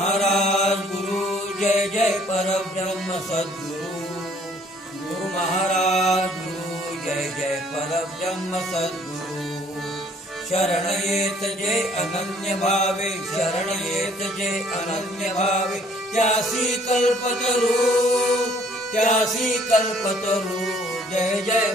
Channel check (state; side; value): normal; both; correlation 0.60